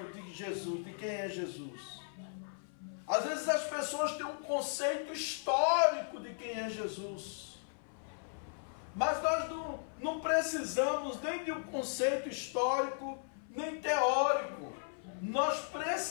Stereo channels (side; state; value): right; silent; 54 dB below the other